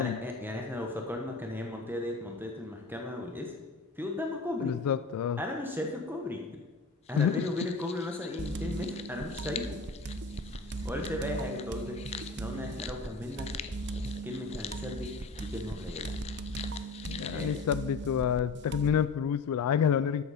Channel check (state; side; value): quieter; right; 4.1 dB